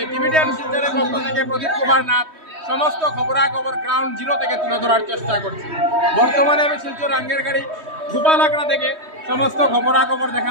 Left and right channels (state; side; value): late; left; 3.2 ms